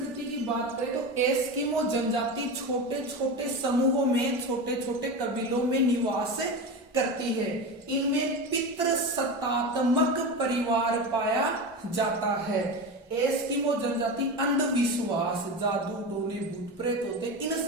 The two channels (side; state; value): both; normal; correlation 0.23